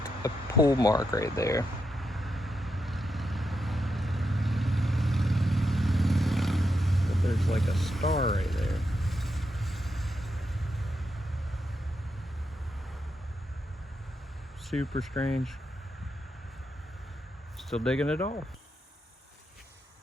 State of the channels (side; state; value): both; normal; correlation 0.84